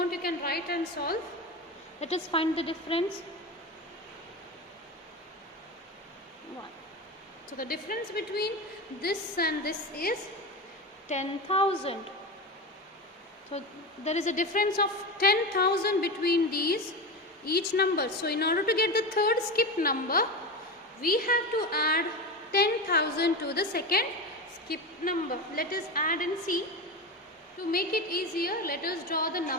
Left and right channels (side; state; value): both; normal; correlation 0.22